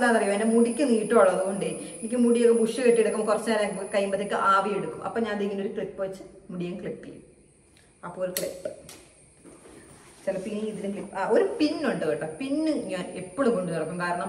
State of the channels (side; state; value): both; identical; correlation 1.00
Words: എൻ്റെ മുടിക്ക് നീട്ടമുള്ളത് കൊണ്ട് എനിക്ക് മുടിയൊക്കെ ബുഷ് കെട്ടിയെടുക്കുമ്പോൾ കുറച്ച് നേരം കഴിയുമ്പോഴത്തേക്ക് ആവി എടുക്കും. അപ്പം ഞാൻ അതിങ്ങനെ ഒരു ക്ലിപ്പ് വെച്ച് മുടിയും ക്ലിപ്പ് ചെയ്യും. അപ്പോൾ ഒരു ക്ലിപ്പ്. ചിലപ്പോൾ ഇനി ഇതിന് ക്ലിപ്പ് ഒരു പിന്നുണ്ട് കേട്ടോ. പിന്ന് ഞാൻ എപ്പോഴും കൊണ്ടു നടക്കും.